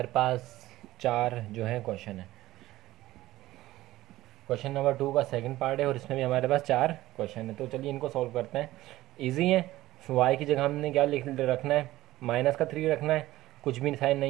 पास 4 जो है क्वेश्चन है। क्वेश्चन नंबर 2 का सेकंड पार्ट है और इसमें भी हमारे पास 4 क्वेश्चन है। तो चलिए इनको सॉल्व करते हैं। इजी है। y की जगह हमने क्या लिख रखना है? माइनस का 3 रखना है। कुछ भी साइन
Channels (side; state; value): left; quieter; 16.3 dB